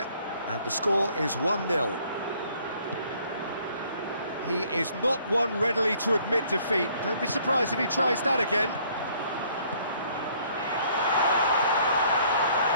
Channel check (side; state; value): both; inverted; correlation -0.61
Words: and the score is 1-0. He is not one readily to admit defeat. Don't be surprised if he tries that again.